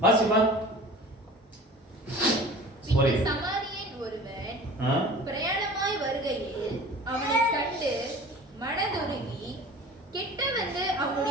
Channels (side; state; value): both; normal; correlation 0.41